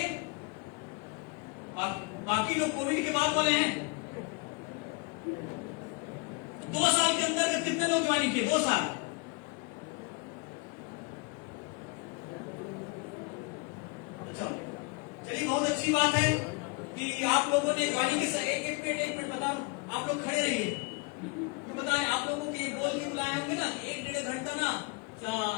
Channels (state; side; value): quieter; right; 28.2 dB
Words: बाकी लोग कोविड के बाद वाले हैं। 2 साल के अंदर कितने लोग ज्वाइन किए? 2 साल। अच्छा चलिए, बहुत अच्छी बात है कि आप लोगों ने ज्वाइनिंग के एक मिनट बता रहा हूं, आप लोग खड़े रहिए। क्यों बता रहे? आप लोगों के बोल के बुलाए होंगे ना, 1-1.5 घंटा ना